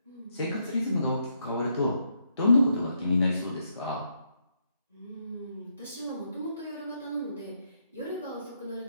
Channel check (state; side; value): inverted; both; correlation -0.77